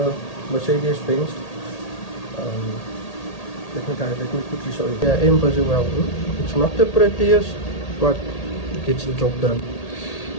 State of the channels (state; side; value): late; right; 1.8 ms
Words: Mercedes-Benz. Let me quickly show you. Yeah, I'm busy welding. It's not the prettiest, but it gets the job done.